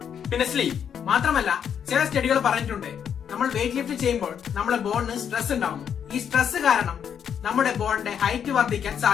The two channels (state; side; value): quieter; right; 8.2 dB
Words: പിന്നെ സ്ലീപ്പ്. മാത്രമല്ല ചില സ്റ്റഡികൾ പറഞ്ഞിട്ടുണ്ട് നമ്മൾ വെയിറ്റ് ലിഫ്റ്റ് ചെയ്യുമ്പോൾ നമ്മുടെ ബോണിന് സ്ട്രെസ് ഉണ്ടാവുന്നു. ഈ സ്ട്രെസ് കാരണം നമ്മുടെ ബോണിന്റെ ഹൈറ്റ് വർദ്ധിക്കാൻ